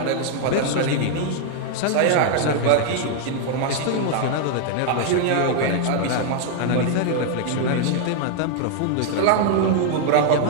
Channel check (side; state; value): both; different; correlation 0.00